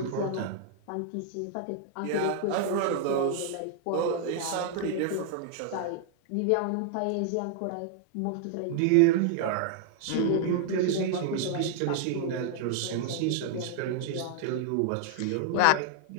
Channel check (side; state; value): both; different; correlation 0.00